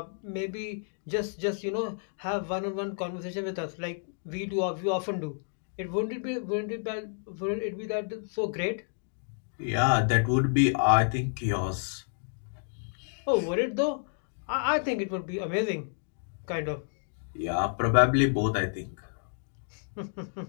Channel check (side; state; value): right; silent; digital silence